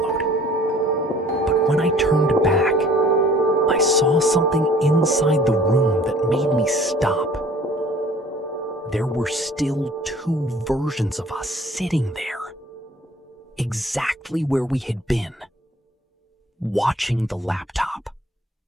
But when I turned back, I saw something inside the room that made me stop. There were still two versions of us sitting there, exactly where we had been, watching the laptop,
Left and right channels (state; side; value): normal; both; correlation 0.53